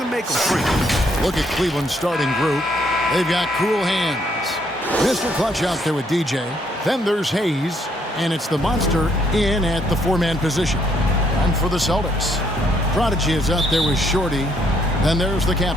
make them free. Look at Cleveland's starting group. They've got cool hands. Mr. Clutch out there with DJ. Then there's Hayes, and it's the monster in at the four-man position. And for the Celtics, Prodigy is out there with Shorty. Then there's the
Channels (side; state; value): both; normal; correlation 0.70